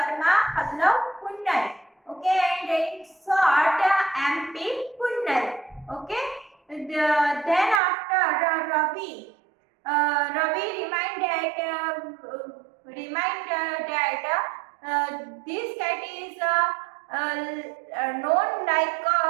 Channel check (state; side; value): drops out; left; at 7.8 s